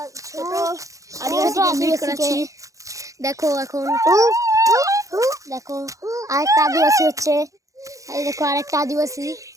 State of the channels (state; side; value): late; left; 0.16 ms